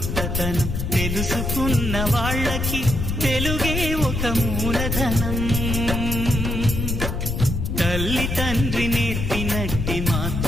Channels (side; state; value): left; noise; rumble, 2 dB below the sound